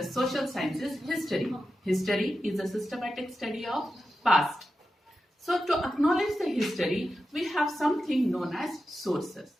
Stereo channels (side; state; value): both; normal; correlation 0.91